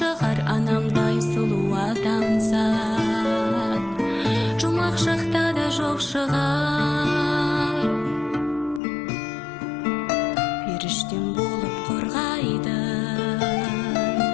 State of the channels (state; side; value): drops out; right; at 8.8 s